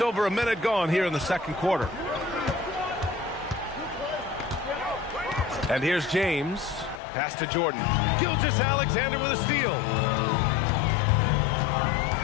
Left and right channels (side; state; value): right; drops out; at 7.0 s